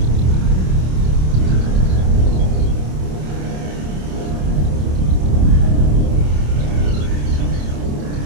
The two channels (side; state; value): left; late; 27 ms